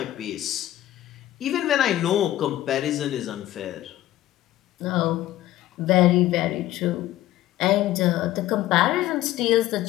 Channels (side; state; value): right; quieter; 14.4 dB